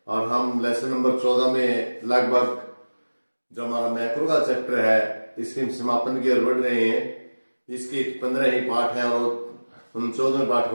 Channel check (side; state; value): both; inverted; correlation -1.00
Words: और हम लेसन नंबर 14 में लगभग जो हमारा मैक्रो का चैप्टर है इसके समापन की ओर बढ़ रहे हैं। इसके 15 ही पाठ हैं और हम 14वें पाठ